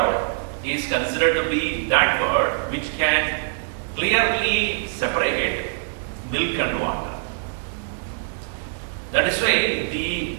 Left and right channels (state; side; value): silent; left; digital silence